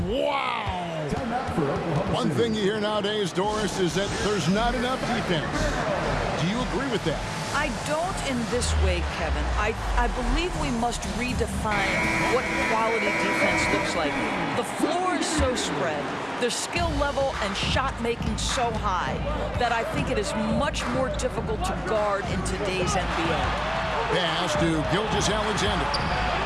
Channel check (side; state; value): both; identical; correlation 1.00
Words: Wow. One thing you hear nowadays, Doris, is that there's not enough defense. Do you agree with that? I don't in this way, Kevin. I believe we must redefine what quality defense looks like. The floor is so spread, their skill level and shot making so high that I think it is much more difficult to guard in today's NBA. Pass to Gilgeous-Alexander.